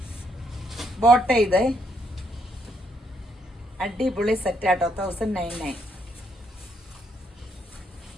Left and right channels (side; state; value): both; normal; correlation 0.74